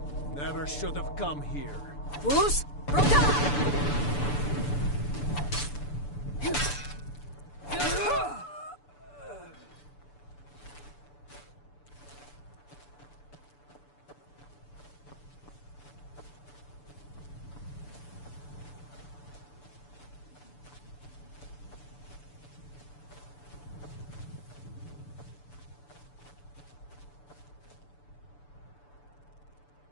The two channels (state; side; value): late; right; 6.9 ms